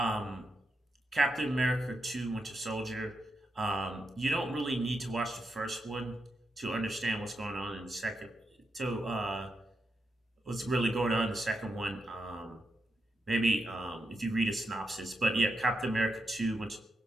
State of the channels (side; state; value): both; normal; correlation 0.84